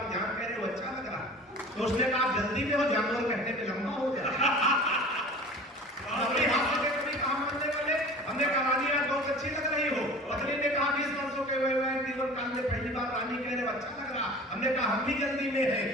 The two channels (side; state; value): both; normal; correlation 0.40